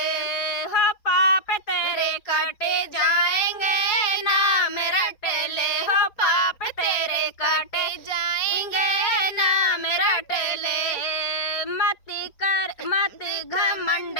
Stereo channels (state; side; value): late; right; 4.4 ms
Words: हो पाप तेरे काटे जाएंगे, ना मेरा टेले हो पाप तेरे काटे जाएंगे, ना मेरा टेले। मत घमंड